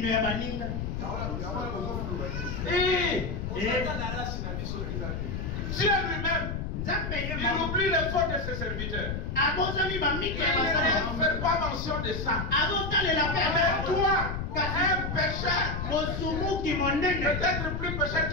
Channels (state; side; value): noise; left; rumble, 4 dB below the sound